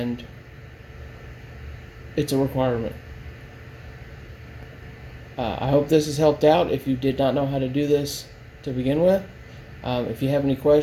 it's a requirement. I hope this has helped out if you did not know how to do this to begin with. If you have any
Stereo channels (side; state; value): both; identical; correlation 1.00